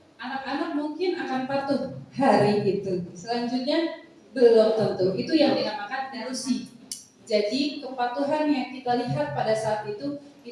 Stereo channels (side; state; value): both; identical; correlation 1.00